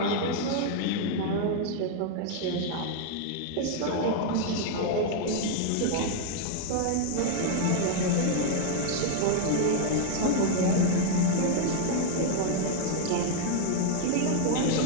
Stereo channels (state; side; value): different; both; correlation 0.00